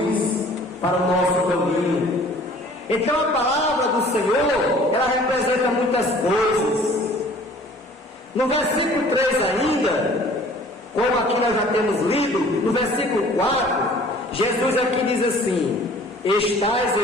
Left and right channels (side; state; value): both; normal; correlation 0.51